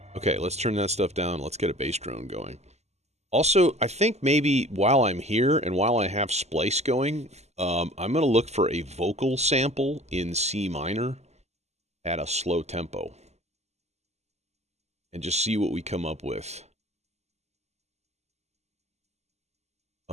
Okay, let's turn that stuff down. Let's get a bass drone going. Also, I think maybe while I'm here and while I have splice going, I'm going to look for a vocal sample in C minor at a slow tempo. And just see what we come up with.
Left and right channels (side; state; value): left; late; 0.32 ms